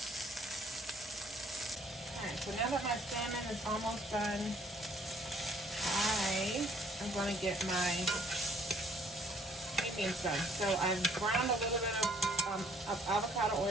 Alright, so now that my salmon is almost done, I am going to get my sweet beans done. So I've browned a little bit of avocado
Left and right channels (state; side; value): normal; both; correlation 0.62